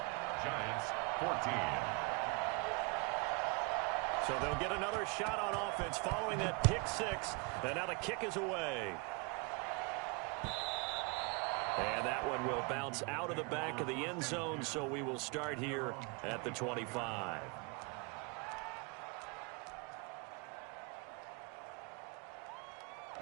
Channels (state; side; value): quieter; left; 29.9 dB